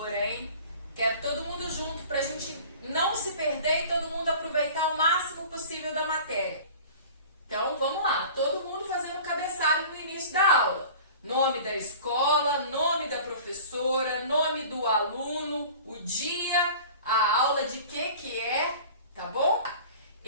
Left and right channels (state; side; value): inverted; both; correlation -0.42